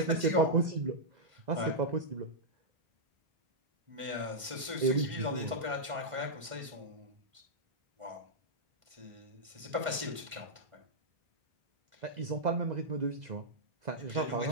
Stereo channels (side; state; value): left; late; 1.5 ms